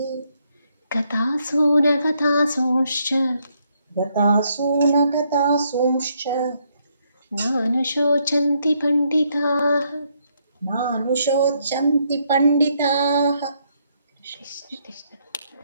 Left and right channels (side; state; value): both; inverted; correlation -0.74